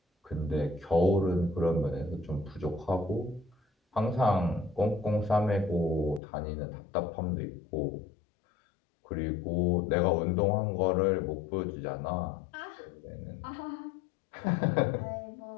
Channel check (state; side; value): drops out; right; at 6.2 s